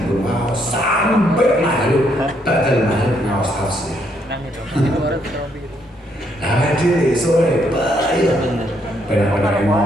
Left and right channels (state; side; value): normal; both; correlation 0.73